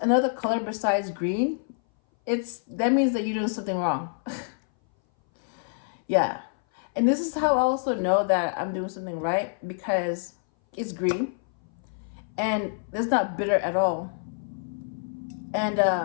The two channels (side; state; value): right; silent; 59 dB below the other